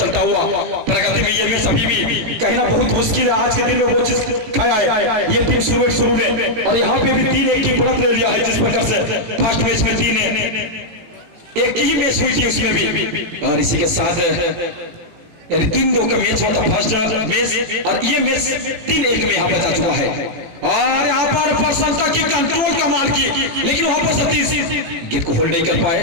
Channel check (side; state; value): left; late; 18 ms